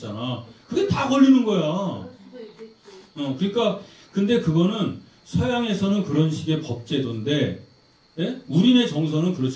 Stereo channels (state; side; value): identical; both; correlation 1.00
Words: 그게 다 걸리는 거야. 그럴 수도 있겠지. 그러니까 근데 그거는 서양에서는 그런 식의 법제도인데 예? 우리네 정서는